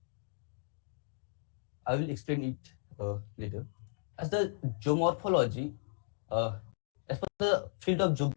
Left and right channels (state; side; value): silent; right; digital silence